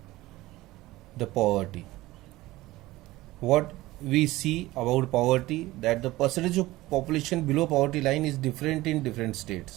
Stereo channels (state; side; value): quieter; left; 18.1 dB